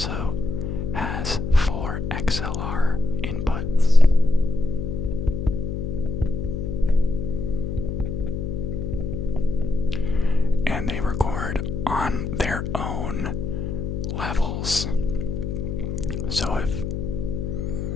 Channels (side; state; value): left; noise; hum, 3 dB below the sound